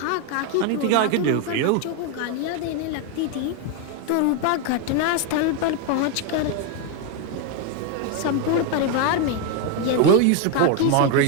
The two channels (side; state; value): both; different; correlation 0.01